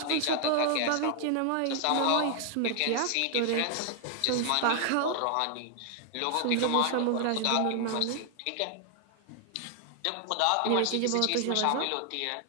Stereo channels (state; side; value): different; both; correlation 0.00